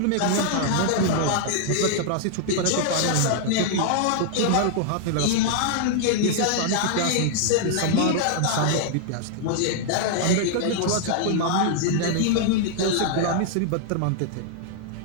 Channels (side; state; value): both; different; correlation 0.00